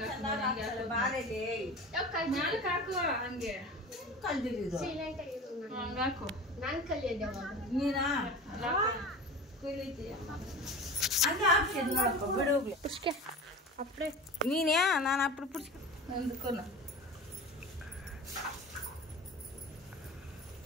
ನಾನು ಕಲಿಯೋದು ಅಪ್ಪಡೆ ನೀನೇ ನಾನು ಅప్పుడు ಪುಡ್ಸ್ಕೊ ನಂದುಕೋನ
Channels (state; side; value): normal; both; correlation 0.34